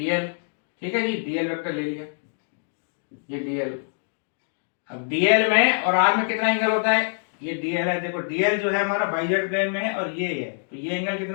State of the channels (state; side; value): silent; right; digital silence